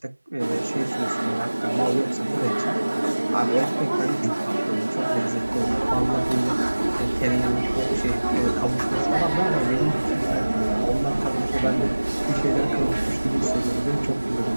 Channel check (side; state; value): both; inverted; correlation -1.00